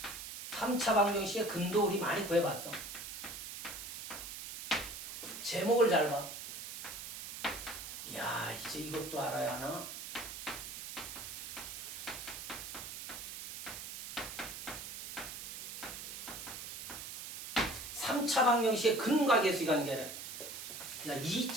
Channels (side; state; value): right; noise; hiss, 8 dB below the sound